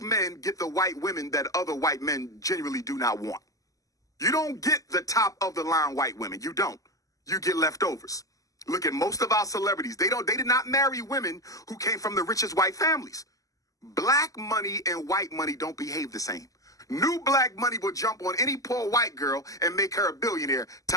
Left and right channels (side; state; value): right; late; 0.17 ms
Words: men get the white women that other white men genuinely do not want. You don't get the top of the line white women. You don't. You get leftovers. Look at most of our celebrities. They did not marry women who came from the richest white families. Black money and white money don't behave the same. New black money will jump on any poor white girl and make her a billionaire,